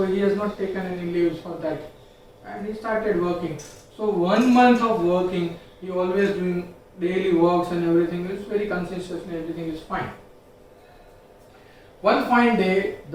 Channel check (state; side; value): identical; both; correlation 1.00